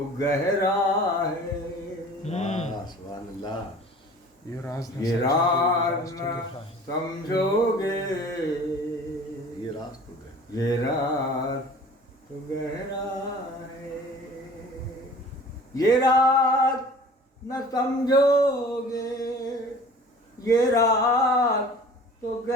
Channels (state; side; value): normal; both; correlation 0.45